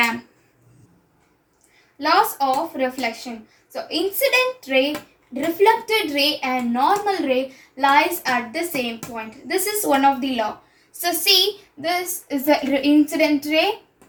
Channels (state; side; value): identical; both; correlation 1.00